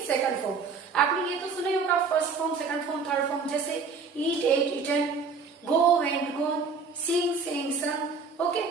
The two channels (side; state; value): left; quieter; 4.9 dB